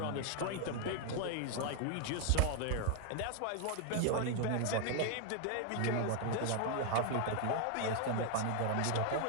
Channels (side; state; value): both; different; correlation 0.00